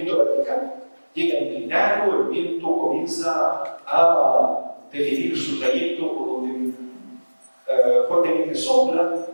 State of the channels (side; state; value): both; inverted; correlation -1.00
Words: vertical. llega inclinado, el viento comienza a definir su trayecto por donde fuertemente sopla,